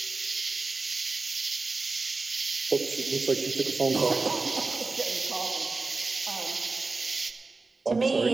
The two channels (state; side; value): quieter; left; 3.8 dB